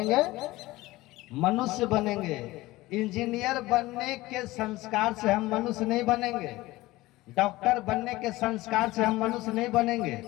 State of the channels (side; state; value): right; quieter; 18.8 dB